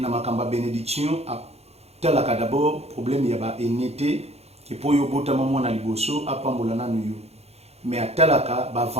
makamba bénédiction a talaka d'abord problème ya ba enité que pour yo bota maman na liboso apambola na nuyo. Mais à talaka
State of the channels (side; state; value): left; late; 0.30 ms